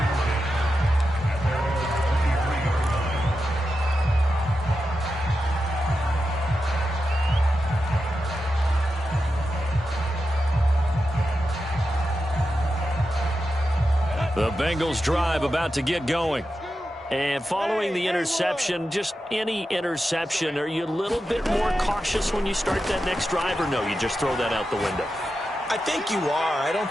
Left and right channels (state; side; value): normal; both; correlation 0.90